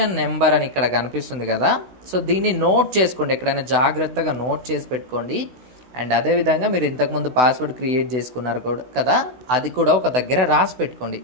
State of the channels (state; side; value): late; left; 16 ms